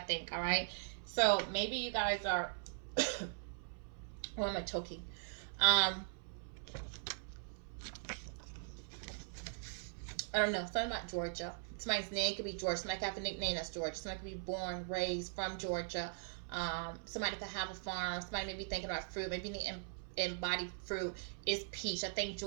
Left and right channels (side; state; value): left; silent; 51 dB below the other